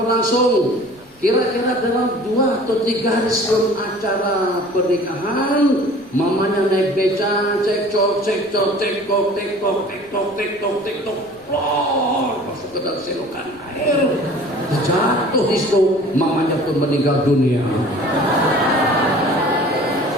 Kira-kira dalam 2 atau 3 hari sebelum acara pernikahan, mamanya naik beca, cekcok, plor, masuk ke dalam selokan air, jatuh di situ, mamanya pun meninggal dunia.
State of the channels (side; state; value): left; noise; rumble, 29 dB below the sound